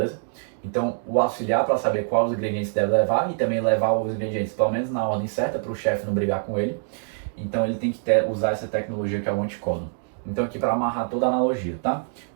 Então, o auxiliar, para saber quais os ingredientes deve levar e também levar os ingredientes, pelo menos na ordem certa, para o chefe não brigar com ele. Então, ele tem que usar essa tecnologia que é o anticódon. Então, aqui para amarrar toda a analogia, tá?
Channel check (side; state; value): left; silent; digital silence